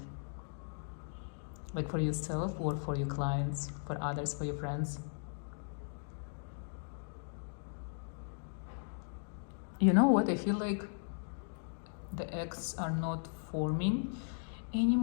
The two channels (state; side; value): silent; right; digital silence